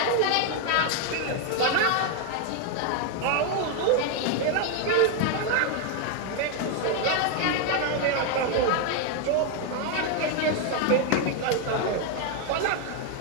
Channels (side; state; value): both; different; correlation 0.01